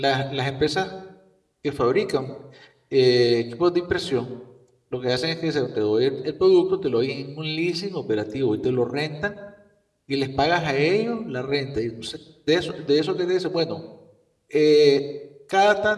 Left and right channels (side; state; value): both; identical; correlation 1.00